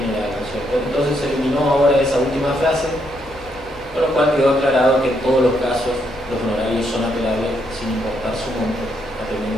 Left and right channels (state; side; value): normal; both; correlation 0.76